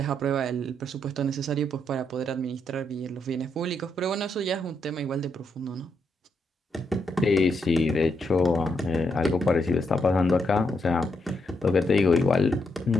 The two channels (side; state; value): both; normal; correlation 0.79